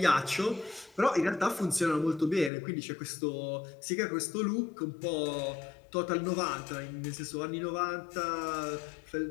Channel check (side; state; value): right; drops out; at 2.5 s